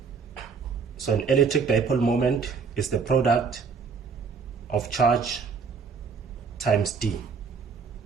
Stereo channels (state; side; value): quieter; left; 5.5 dB